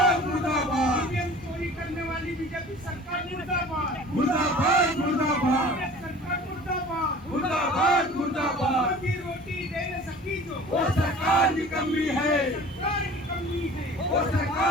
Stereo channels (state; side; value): normal; both; correlation 0.44